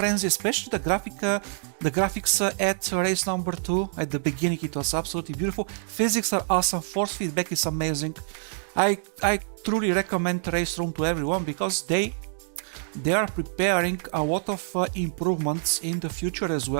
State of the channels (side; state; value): left; silent; digital silence